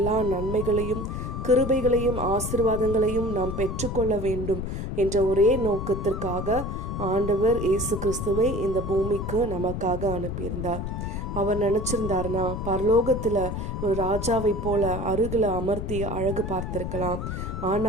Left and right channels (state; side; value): noise; left; rumble, 4 dB below the sound